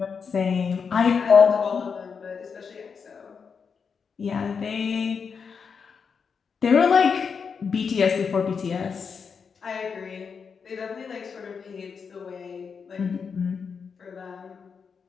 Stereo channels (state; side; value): quieter; right; 6.0 dB